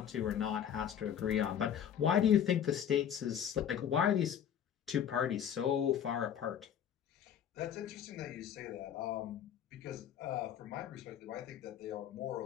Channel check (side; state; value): right; quieter; 9.1 dB